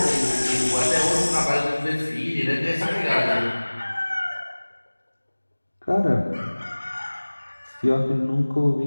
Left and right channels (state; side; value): inverted; both; correlation -1.00